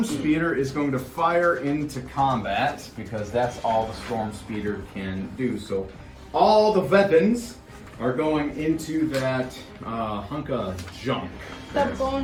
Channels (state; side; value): identical; both; correlation 1.00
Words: Speeder is going to fire into combat because that's all the Storm Speeder can do. So all the weapons are going into that hunk of junk. that